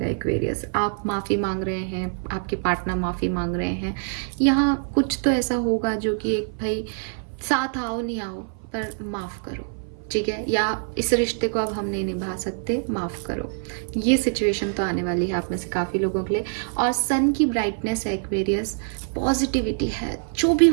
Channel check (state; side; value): silent; left; 56 dB below the other